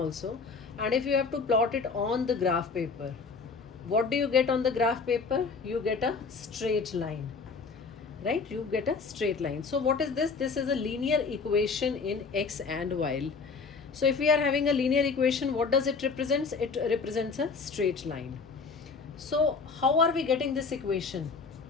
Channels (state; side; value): quieter; right; 4.8 dB